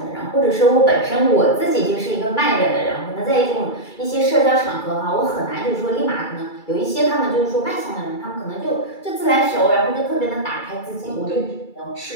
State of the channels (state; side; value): late; right; 2.3 ms